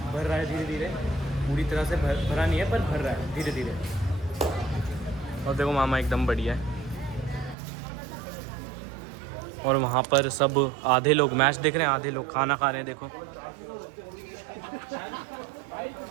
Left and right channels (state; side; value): drops out; left; at 7.6 s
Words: रहा है धीरे धीरे, पूरी तरह से भरा नहीं है पर भर रहा है धीरे धीरे। और देखो मामा एकदम बढ़िया है। और वहाँ पर सब आधे लोग मैच देख रहे हैं, आधे लोग खाना खा रहे हैं। देखो